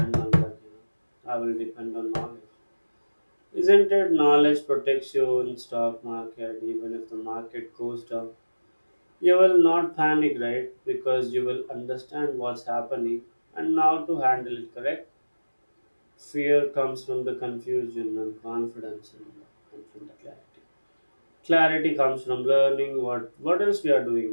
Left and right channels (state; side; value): inverted; both; correlation -1.00